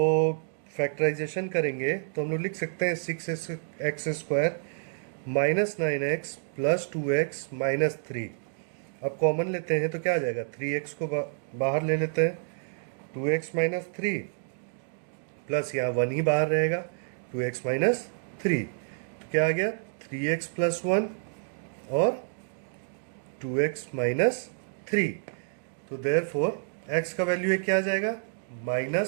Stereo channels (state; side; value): silent; left; digital silence